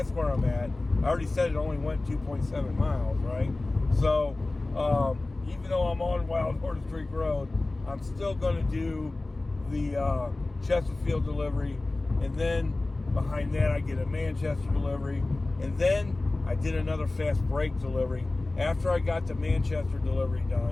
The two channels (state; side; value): quieter; right; 3.0 dB